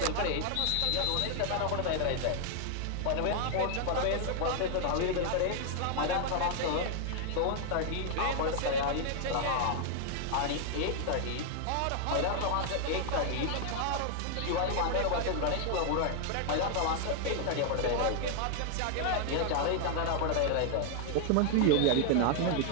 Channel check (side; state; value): both; different; correlation 0.00